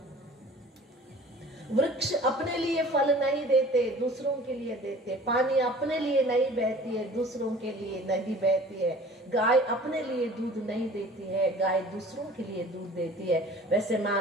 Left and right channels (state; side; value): normal; both; correlation 0.46